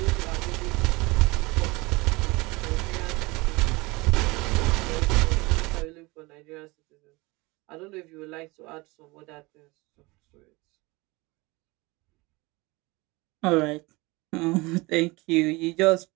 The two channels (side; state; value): left; quieter; 23.7 dB